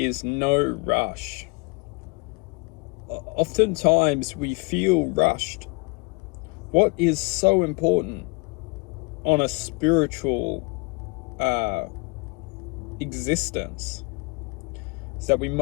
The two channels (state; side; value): quieter; right; 29.2 dB